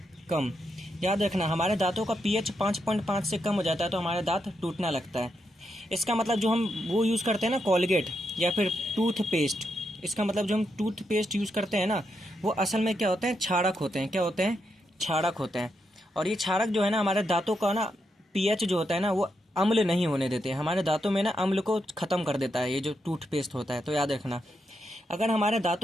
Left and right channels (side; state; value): both; normal; correlation 0.82